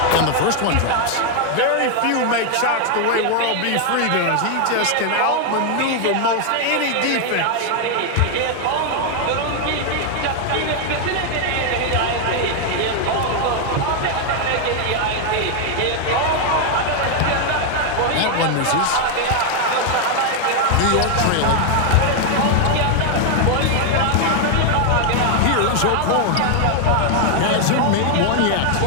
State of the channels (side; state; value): both; different; correlation 0.00